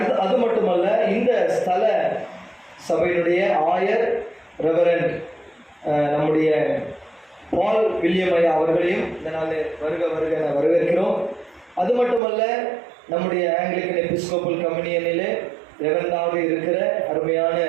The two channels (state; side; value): drops out; left; at 12.2 s